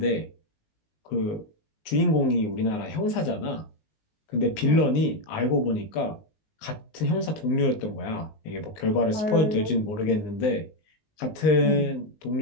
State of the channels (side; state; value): right; late; 19 ms